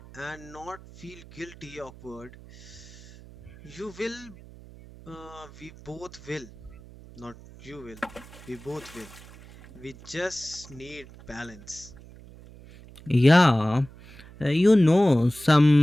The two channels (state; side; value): noise; right; hum, 20 dB below the sound